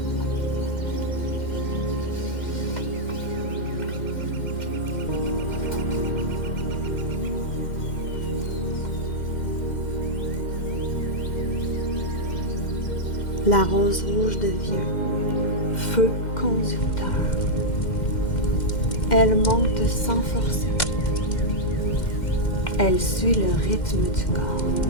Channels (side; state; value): right; late; 2.1 ms